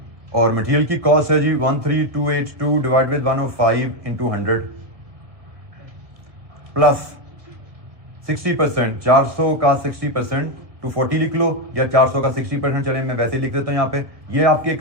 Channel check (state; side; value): late; left; 1.7 ms